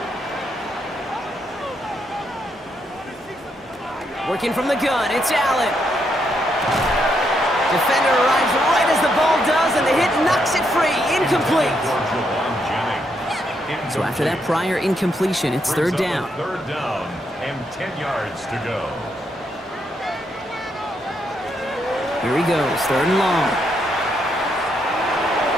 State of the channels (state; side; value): normal; both; correlation 0.78